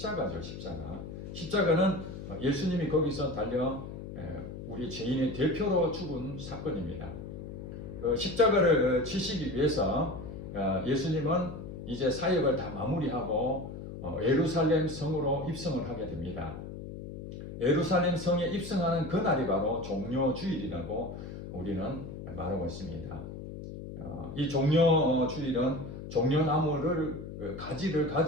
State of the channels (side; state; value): left; noise; hum, 10 dB below the sound